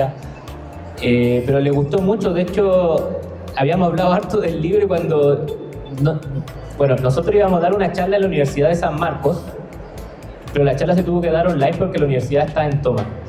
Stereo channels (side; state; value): both; identical; correlation 1.00